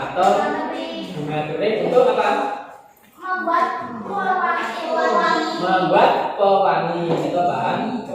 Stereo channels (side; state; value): both; identical; correlation 1.00